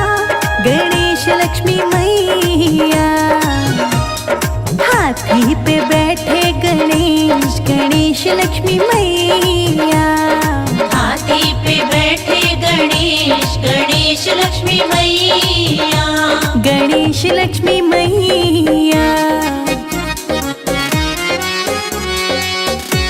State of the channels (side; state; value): both; identical; correlation 1.00